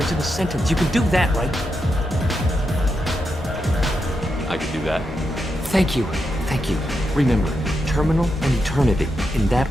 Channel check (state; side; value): normal; both; correlation 0.85